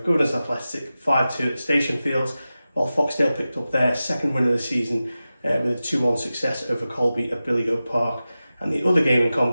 Governors Athletic 5-2 at Station Fields, while Foxdale picked up their second win of the season with a 2-1 success over Colby at Billygoat Park. And the other game in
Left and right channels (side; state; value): both; inverted; correlation -0.95